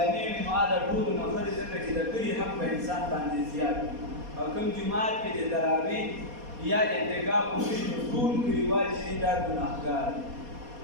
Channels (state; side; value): late; left; 4.2 ms